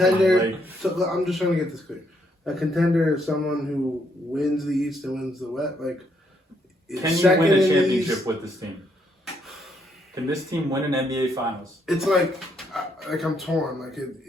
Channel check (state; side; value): normal; both; correlation 0.73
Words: opinion. So I'm just trying to get this clear. A contender is someone who wins the East and wins the West. Like, is Can you second win a in the championship East. with this team? Can this team win an NBA Finals? It's like I'm torn. Like